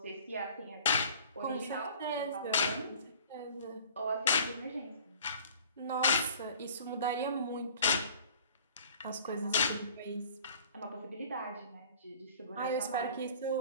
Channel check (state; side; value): inverted; both; correlation -0.49